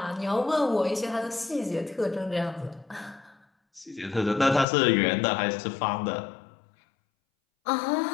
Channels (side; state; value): right; drops out; at 4.7 s